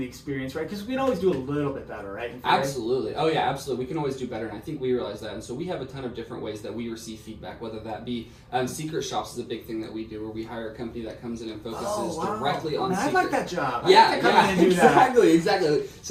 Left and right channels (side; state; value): both; identical; correlation 1.00